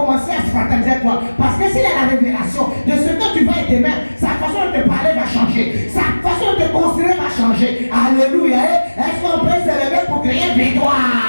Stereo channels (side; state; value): both; inverted; correlation -1.00